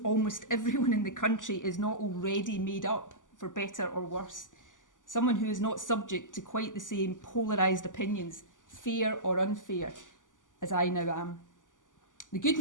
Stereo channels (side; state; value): right; late; 0.88 ms